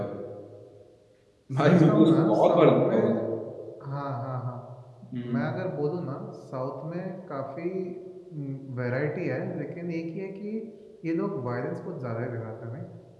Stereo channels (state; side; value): identical; both; correlation 1.00